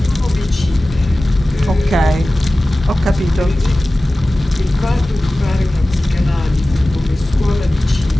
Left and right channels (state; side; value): normal; both; correlation 0.97